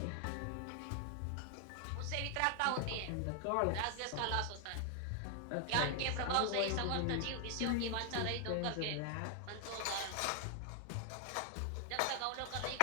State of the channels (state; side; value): different; both; correlation 0.00